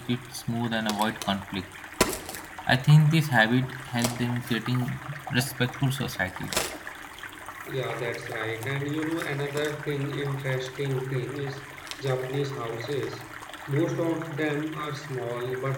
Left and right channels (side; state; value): both; identical; correlation 1.00